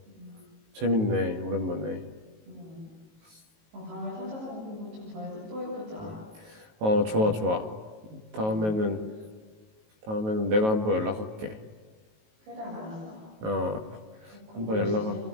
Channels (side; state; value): left; late; 19 ms